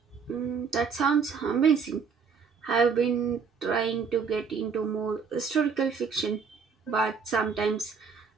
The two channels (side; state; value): left; quieter; 5.8 dB